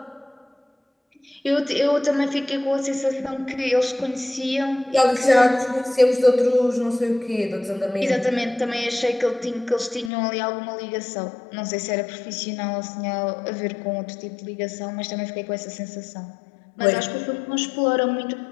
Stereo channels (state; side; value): drops out; right; at 10.1 s